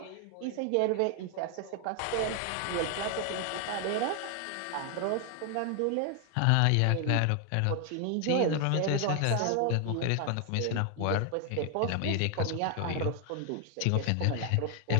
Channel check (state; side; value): different; both; correlation 0.00